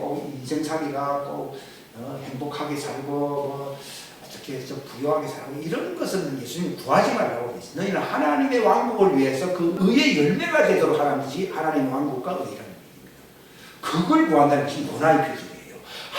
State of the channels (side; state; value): both; identical; correlation 1.00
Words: 인생살이가 꼭 행복하게 살고 어떻게 해서 부유하게 살고 이런 것은 예수님 구하지 말라고 그랬어요. 너희는 하나님의 왕국을 위해서 그 의의 열매가 되도록 하는 것이 하나님의 왕국과 의라는 얘기입니다. 그걸 구한다는 것이 요나의 표적이에요.